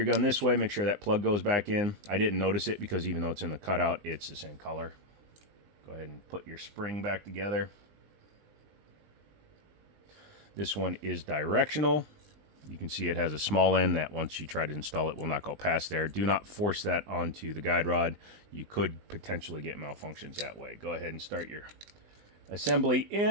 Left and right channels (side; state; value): left; late; 19 ms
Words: gun this way. Make sure that plug goes back in. I didn't notice it because even though it's in the cutout, it's the same color. Go ahead and put your spring back together. This one is directional. You can see it has a small end that once you try to install it will not go past there. Do not force that onto the guide rod. You could potentially get malfunctions that way. Go ahead and start your assembly